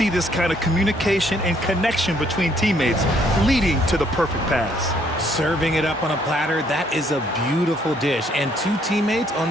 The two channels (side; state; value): both; normal; correlation 0.67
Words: this kind of communication and connection between teammates leading to the perfect pass. Serving it up on a platter, that is a beautiful dish. And two teammates on